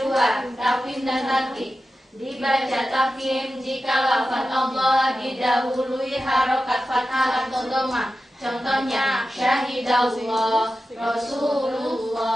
tafkhim dan tarkib. Dibaca tafkhim jika lafaz Allah didahului harokat fathah atau dhammah. Contohnya syahidallah,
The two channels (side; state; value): both; normal; correlation 0.92